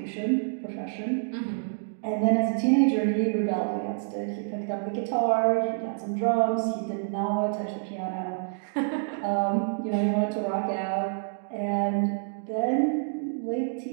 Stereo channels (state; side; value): silent; left; digital silence